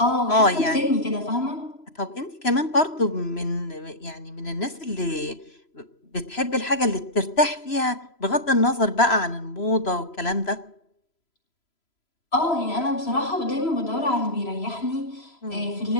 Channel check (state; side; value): late; right; 3.0 ms